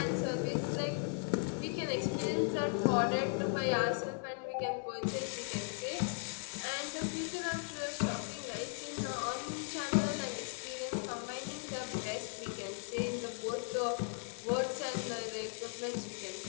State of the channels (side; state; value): right; silent; 53 dB below the other